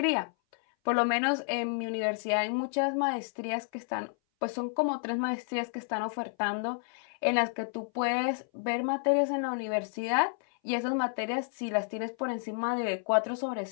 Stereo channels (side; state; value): right; silent; 57 dB below the other